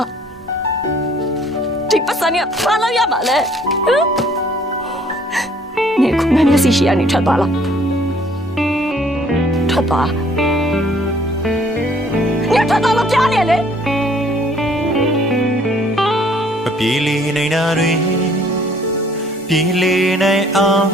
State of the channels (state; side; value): normal; both; correlation 0.59